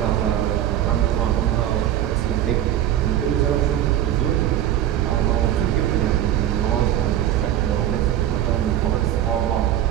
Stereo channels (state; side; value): quieter; left; 11.6 dB